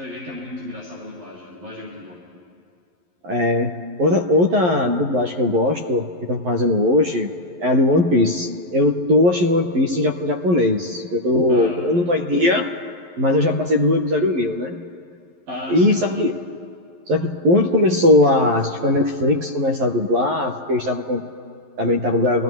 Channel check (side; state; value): left; late; 11 ms